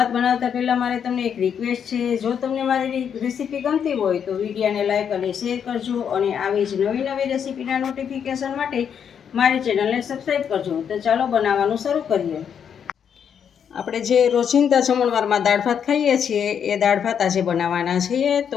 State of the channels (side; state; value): right; quieter; 7.9 dB